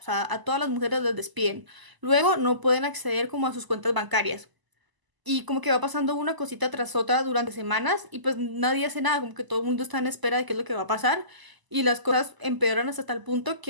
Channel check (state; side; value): late; left; 1.0 ms